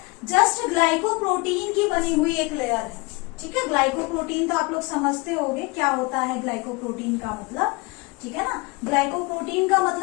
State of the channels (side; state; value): right; quieter; 26.3 dB